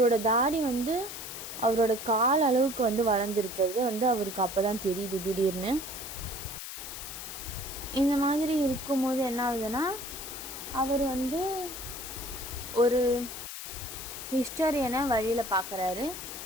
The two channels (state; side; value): noise; left; hiss, 9 dB below the sound